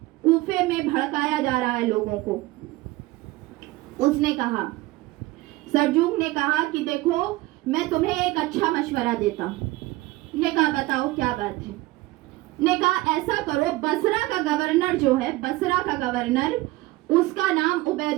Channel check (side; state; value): left; quieter; 19.3 dB